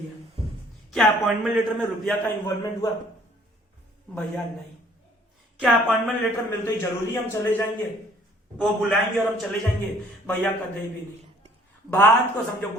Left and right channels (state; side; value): normal; both; correlation 0.58